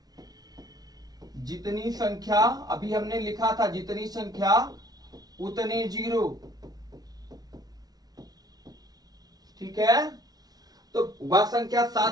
जितनी संख्या अभी हमने लिखा था, जितनी संख्या उतने जीरो। ठीक है, तो वह संख्या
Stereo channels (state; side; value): late; left; 0.19 ms